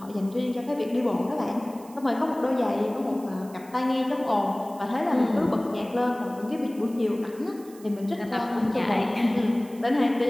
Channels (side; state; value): right; noise; hiss, 23 dB below the sound